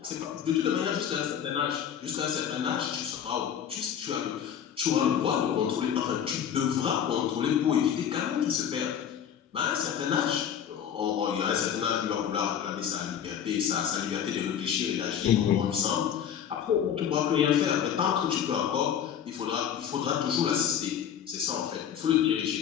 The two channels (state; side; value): quieter; right; 8.9 dB